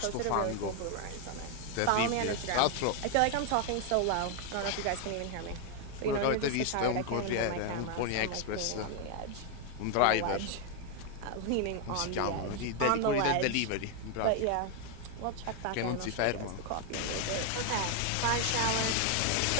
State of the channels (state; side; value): different; both; correlation 0.01